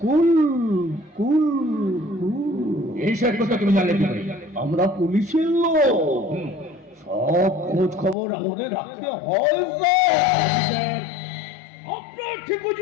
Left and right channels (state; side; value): drops out; right; at 8.2 s